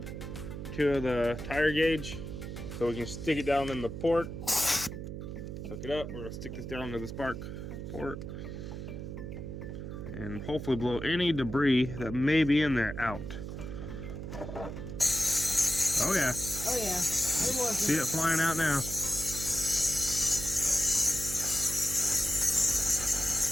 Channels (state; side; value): noise; right; hum, 7 dB below the sound